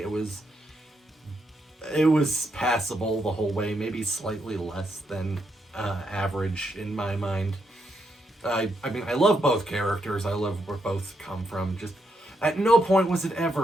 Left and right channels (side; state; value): both; normal; correlation 0.79